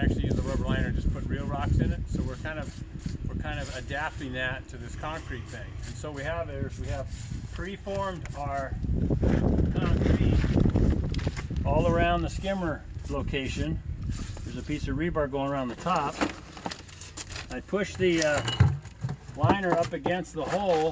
use a rubber liner and just put real rocks in it. So we're kind of adapting that to this concrete thing. And so we have preformed our concrete all around the skimmer location. There's a piece of rebar going around the top. I pushed the liner up against the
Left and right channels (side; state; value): both; identical; correlation 1.00